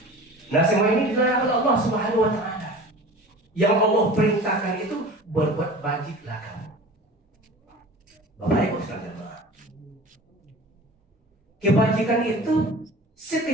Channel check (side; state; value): both; normal; correlation 0.39